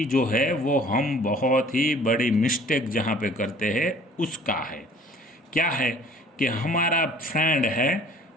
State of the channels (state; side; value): normal; both; correlation 0.52